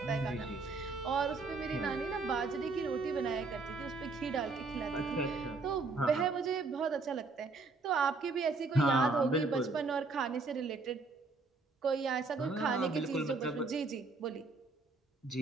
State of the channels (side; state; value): left; quieter; 3.9 dB